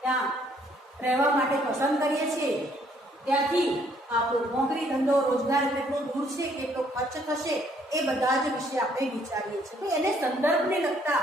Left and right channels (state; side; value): normal; both; correlation 0.65